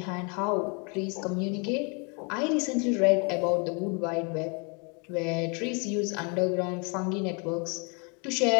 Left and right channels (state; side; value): quieter; right; 34.0 dB